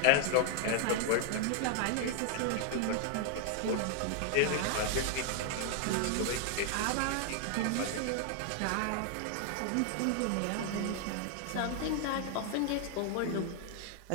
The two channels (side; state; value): both; different; correlation 0.00